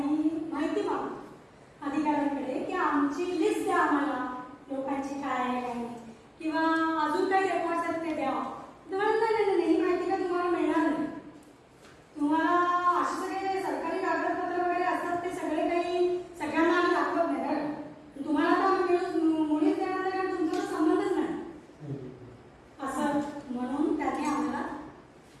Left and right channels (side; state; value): both; identical; correlation 1.00